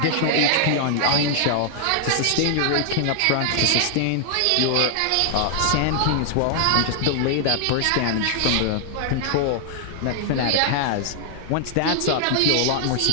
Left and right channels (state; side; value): different; both; correlation 0.00